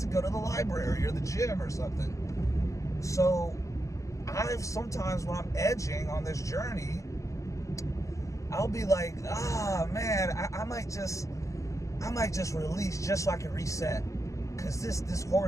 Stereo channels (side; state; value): right; late; 0.15 ms